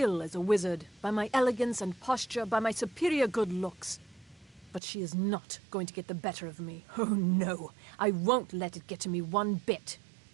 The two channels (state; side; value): drops out; left; at 4.8 s